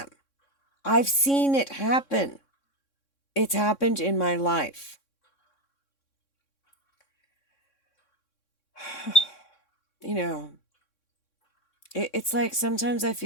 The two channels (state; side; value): late; right; 3.6 ms